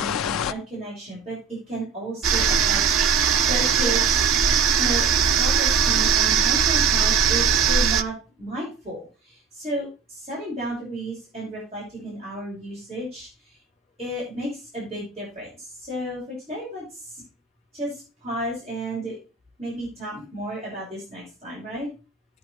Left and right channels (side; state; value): left; quieter; 5.3 dB